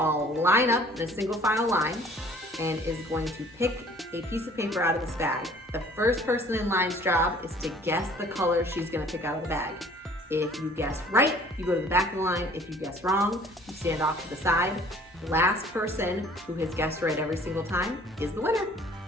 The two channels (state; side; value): normal; both; correlation 0.53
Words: line up in a single file line and is going to pick a piece of paper out of this bag. The first person in line's job is to guess the color she's going to pick out of the bag. If you guess right, you go to the back of the line. If you guess wrong, you stand off to the side. The last person who has guessed right every single time is the winner.